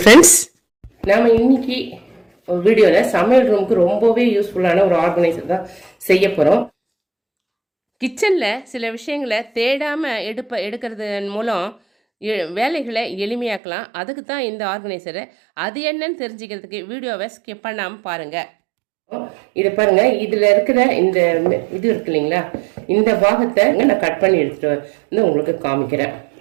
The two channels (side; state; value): left; drops out; at 13.6 s